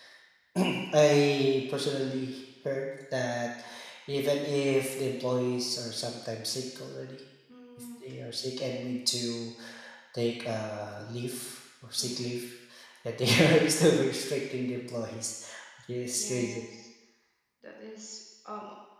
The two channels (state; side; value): identical; both; correlation 1.00